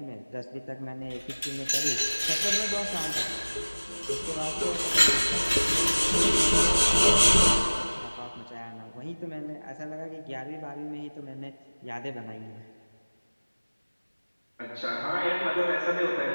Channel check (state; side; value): inverted; both; correlation -1.00